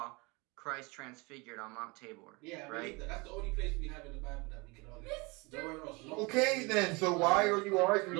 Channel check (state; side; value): quieter; left; 26.8 dB